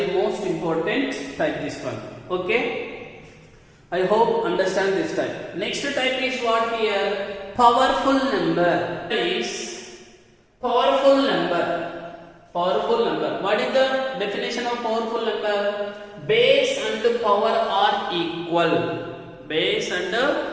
most important type this one. Okay? I hope understand this type. Next type is what here? Powerful number. Is powerful number. Powerful number. What is the definition of powerful number? Base and power are equal. Base and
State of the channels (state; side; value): identical; both; correlation 1.00